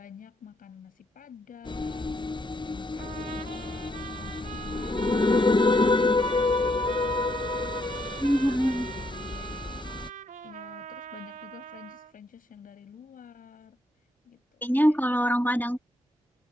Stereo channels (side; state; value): both; normal; correlation 0.75